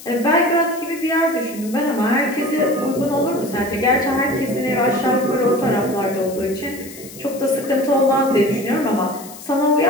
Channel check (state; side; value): noise; left; hiss, 16 dB below the sound